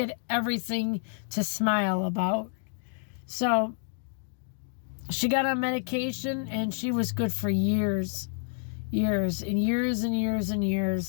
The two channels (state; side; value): silent; right; 59 dB below the other